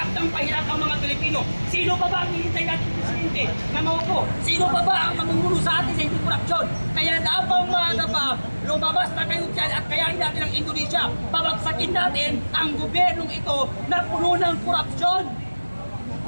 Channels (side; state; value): both; inverted; correlation -1.00